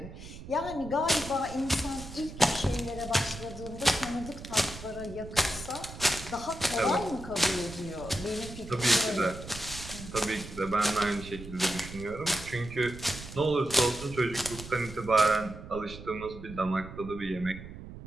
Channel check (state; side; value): noise; right; rumble, 13 dB below the sound